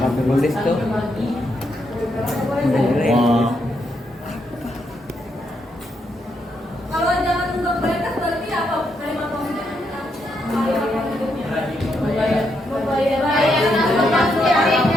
Nulis tuh. Kalau jangan untuk mereka berarti apa? Kalimat positif. Membayar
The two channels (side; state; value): both; normal; correlation 0.79